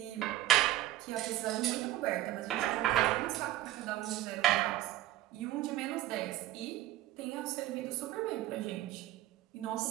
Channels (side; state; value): left; quieter; 14.9 dB